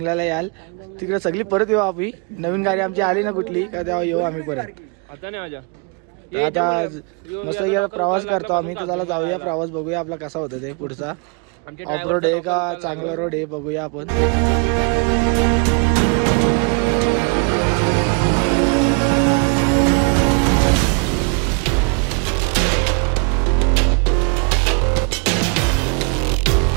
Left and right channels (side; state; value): left; quieter; 35.8 dB